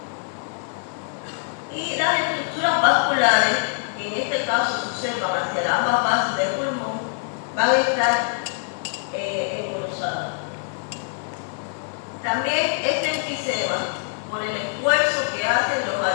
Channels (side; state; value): right; silent; digital silence